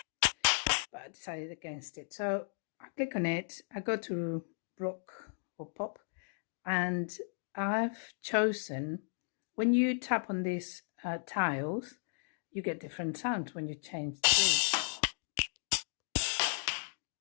I decided against it. So I click on it, I go to rock or pop, and I've chosen, when you tap on these tiles, you get different sounds when you change the grid.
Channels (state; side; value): silent; right; digital silence